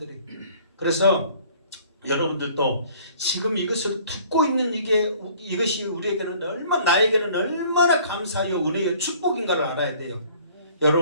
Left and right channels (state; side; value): inverted; both; correlation -0.54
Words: 그래서 여러분들도 지금 이것을 듣고 있는 이것이 우리에게는 나에게는 얼마나 감사하여 은혜의 축복인가를 알아야 돼요.